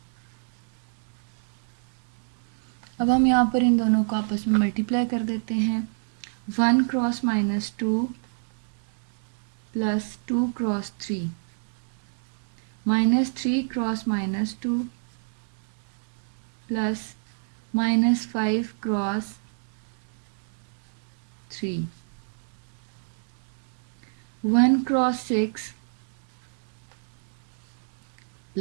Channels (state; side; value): silent; left; digital silence